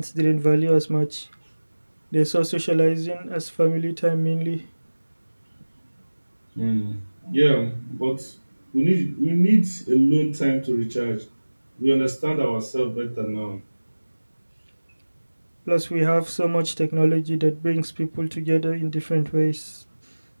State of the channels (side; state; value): both; inverted; correlation -1.00